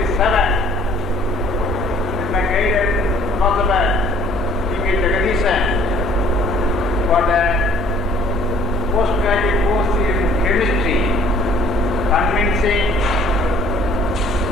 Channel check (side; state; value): both; normal; correlation 0.56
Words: with my guided philosopher T.K. Jagadisan for the postgraduate course in chemistry, convincing